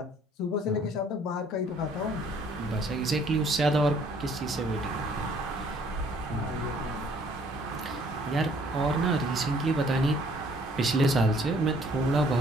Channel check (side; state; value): both; normal; correlation 0.60